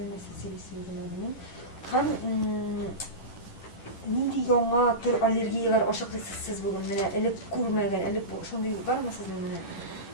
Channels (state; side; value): late; right; 10 ms